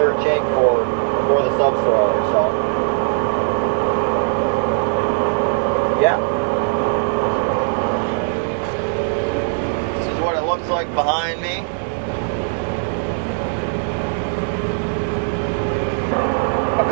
shank for the subsoiler. So yeah, this is what it looks like behind me. A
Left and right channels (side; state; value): left; silent; digital silence